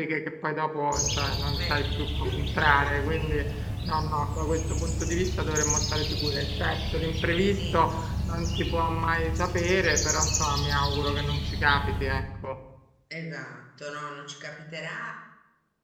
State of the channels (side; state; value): both; identical; correlation 1.00